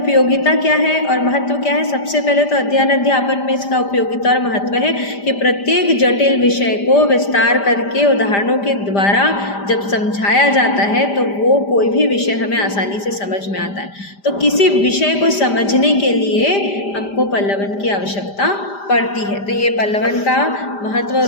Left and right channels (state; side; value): late; right; 5.0 ms